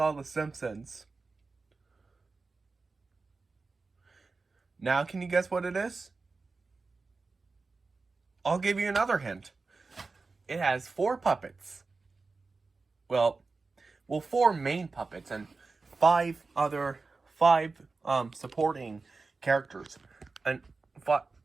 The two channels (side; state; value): left; quieter; 4.0 dB